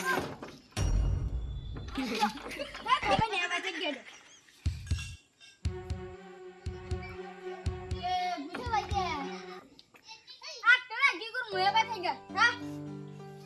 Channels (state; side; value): identical; both; correlation 1.00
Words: খাবাই না বাজে গেল। বুঝে লাগে আটটা কি করব এবার থেকে হ্যাঁ